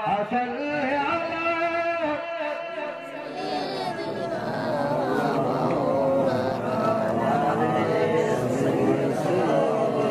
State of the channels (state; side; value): identical; both; correlation 1.00